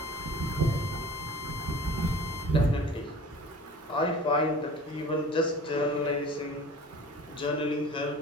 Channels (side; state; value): both; normal; correlation 0.42